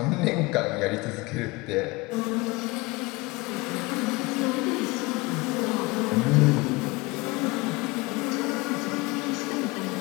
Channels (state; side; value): quieter; right; 23.8 dB